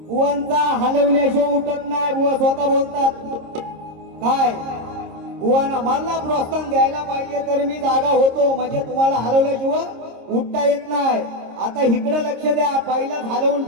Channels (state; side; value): late; left; 26 ms